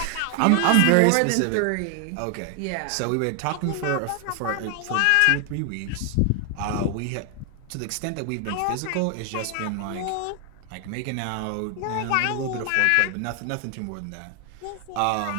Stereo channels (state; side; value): different; both; correlation 0.00